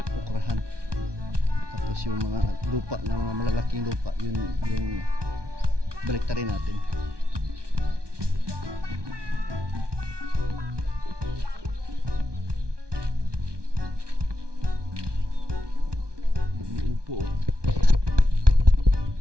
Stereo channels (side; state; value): left; late; 1.2 ms